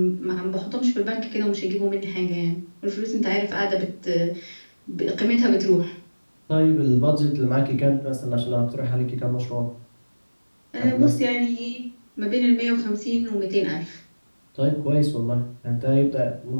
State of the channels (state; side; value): inverted; both; correlation -1.00